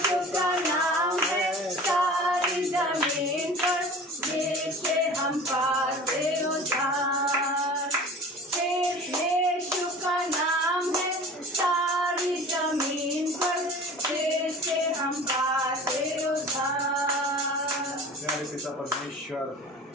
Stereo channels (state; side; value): normal; both; correlation 0.40